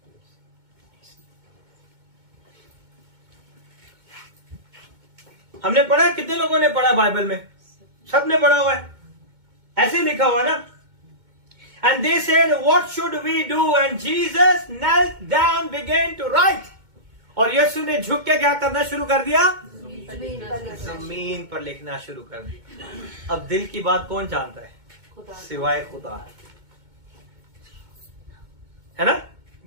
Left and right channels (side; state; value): left; late; 2.2 ms